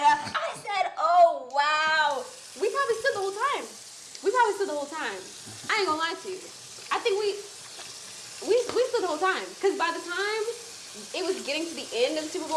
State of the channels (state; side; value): identical; both; correlation 1.00